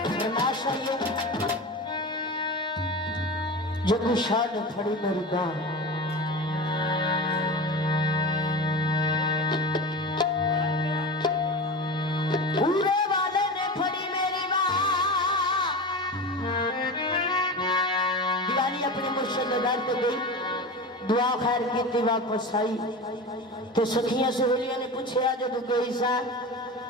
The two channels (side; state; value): both; normal; correlation 0.28